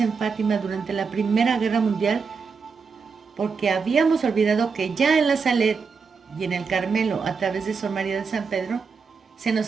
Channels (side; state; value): left; quieter; 5.3 dB